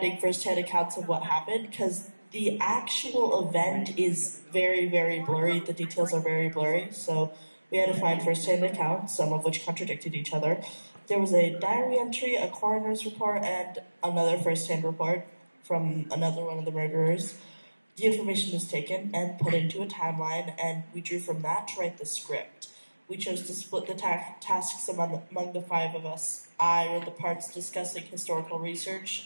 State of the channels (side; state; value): both; inverted; correlation -1.00